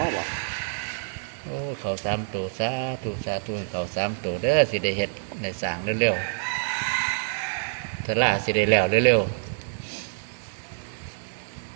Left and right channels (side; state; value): left; silent; 60 dB below the other